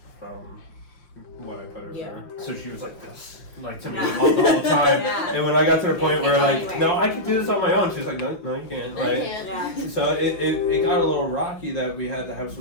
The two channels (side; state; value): right; late; 5.8 ms